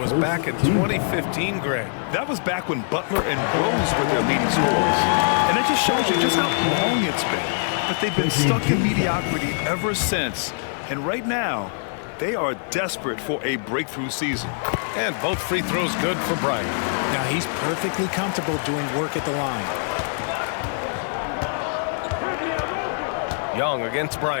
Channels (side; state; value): right; silent; 63 dB below the other